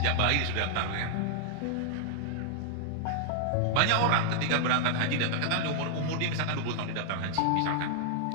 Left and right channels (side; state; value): both; different; correlation -0.01